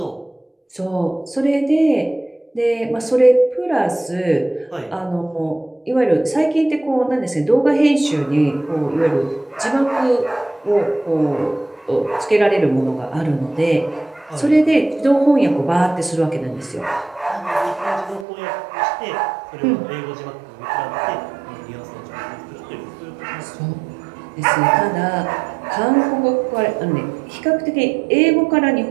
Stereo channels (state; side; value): drops out; left; at 18.2 s